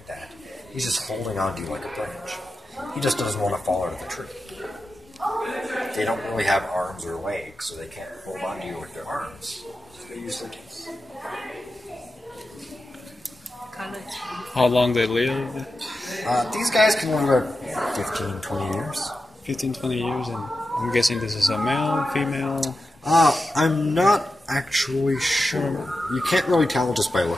that. He's just holding on to you like a branch. He just doesn't want to fall out of the tree. They don't really have arms or legs, so they can't hold on to you with their arms. So they use their teeth. How long they live? These guys can live about 15, 20 years. 15, 20 years, and I'm guessing this is a male, female. I'm not actually sure. You can't really tell just by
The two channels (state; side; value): normal; both; correlation 0.91